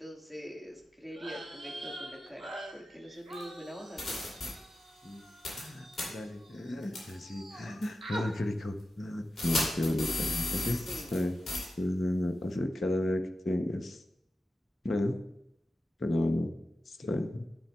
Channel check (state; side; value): normal; both; correlation 0.92